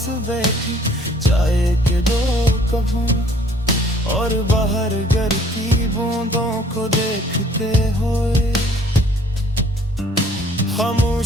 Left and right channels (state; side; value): normal; both; correlation 0.58